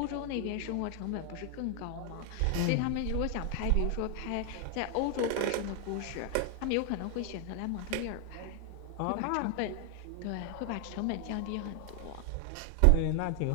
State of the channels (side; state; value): both; different; correlation 0.00